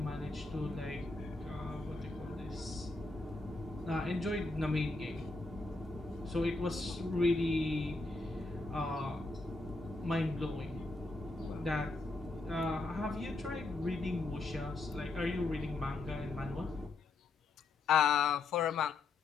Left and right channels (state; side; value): quieter; right; 3.4 dB